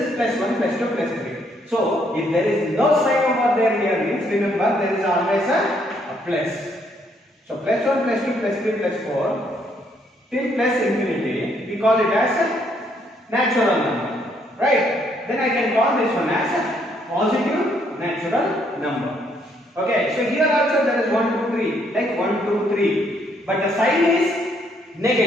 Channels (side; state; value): both; normal; correlation 0.70